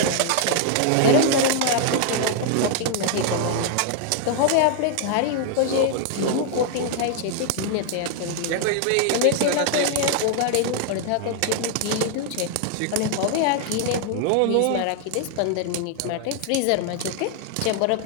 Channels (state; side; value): different; both; correlation 0.00